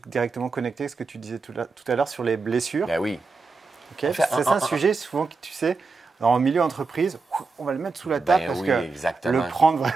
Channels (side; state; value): left; quieter; 4.2 dB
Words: directement connecté à ce que tu disais tout à l'heure sur les blessures? Ben oui. Okay. C'est un sujet souvent que tu sais, dans le milieu entreprise, on va le mettre sous la table parce que exactement. Le prendre